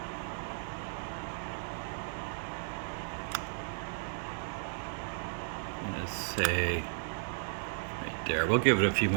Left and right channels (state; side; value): silent; left; 55 dB below the other